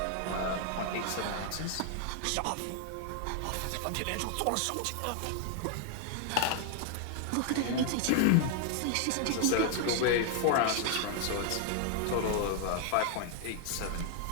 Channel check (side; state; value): both; different; correlation 0.00